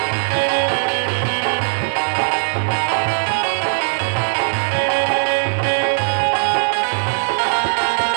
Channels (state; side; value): silent; left; digital silence